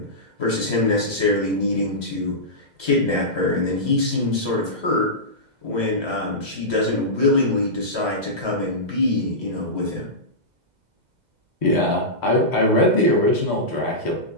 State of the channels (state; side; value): late; left; 2.0 ms